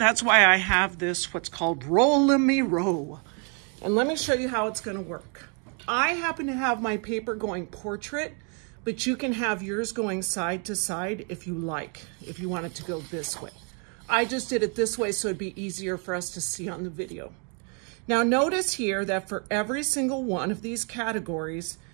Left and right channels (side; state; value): left; quieter; 38.2 dB